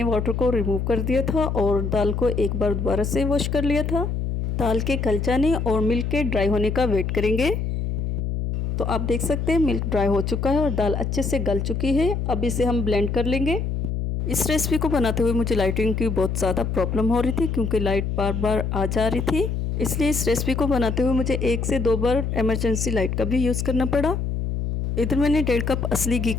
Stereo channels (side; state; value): left; noise; hum, 1 dB below the sound